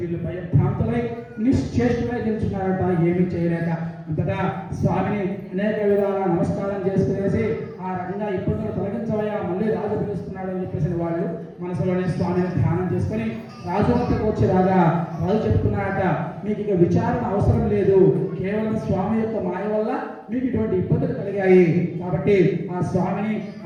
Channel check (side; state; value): both; identical; correlation 1.00